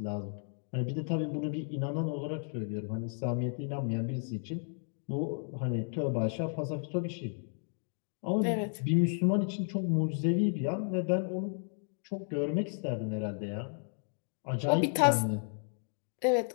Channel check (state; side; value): silent; right; 56 dB below the other